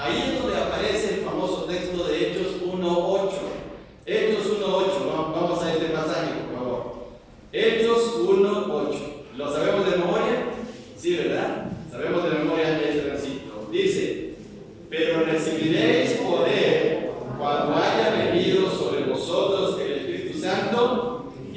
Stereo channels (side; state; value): both; identical; correlation 1.00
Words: es donde aparece el famoso texto de Hechos 1:8. Hechos 1:8, vamos a este pasaje, por favor. Hechos 1:8. ¿Lo sabemos de memoria? Sí, ¿verdad? Sabemos de memoria este versículo. Dice, pero recibiréis poder cuando haya venido sobre vosotros el Espíritu Santo.